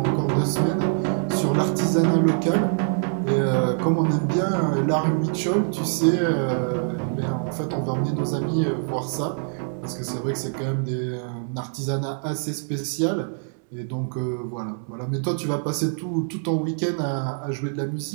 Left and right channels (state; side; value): silent; left; digital silence